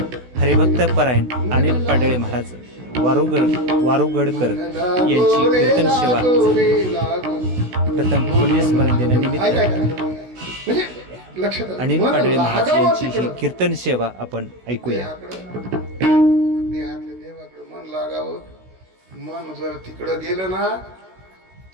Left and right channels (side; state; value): left; late; 16 ms